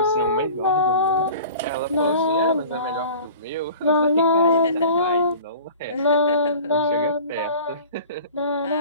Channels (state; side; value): inverted; both; correlation -0.42